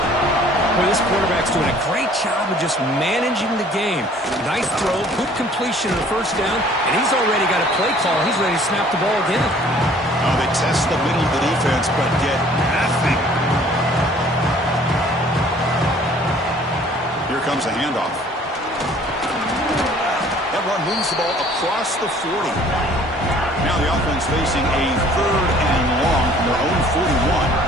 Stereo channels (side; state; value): both; normal; correlation 0.54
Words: Well, this quarterback's doing a great job of just managing the game. Nice throw, good completion on the first down, and he's already got a play call. He's ready to snap the ball again. Oh, they test the middle of the defense, but get nothing. Here comes a handoff. That run moves the ball across the 40. Now the offense facing a 3rd and long from their own